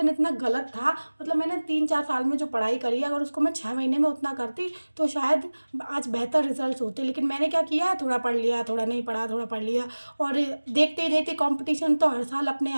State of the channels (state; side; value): inverted; both; correlation -1.00